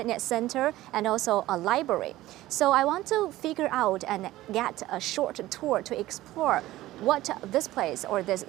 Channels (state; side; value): quieter; left; 16.2 dB